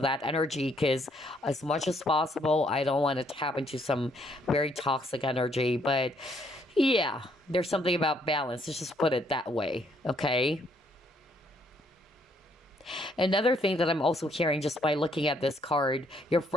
energy because as much as possible, I don't want to tap into some very toxic energy. But yeah, there's something about balance. Let's just put it that way. Okay. Another thing that I'm also hearing just by looking at this card, your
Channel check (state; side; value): normal; both; correlation 0.69